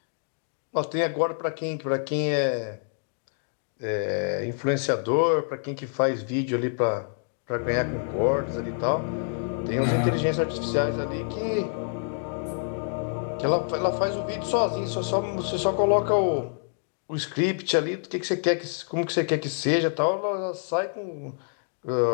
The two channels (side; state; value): right; silent; digital silence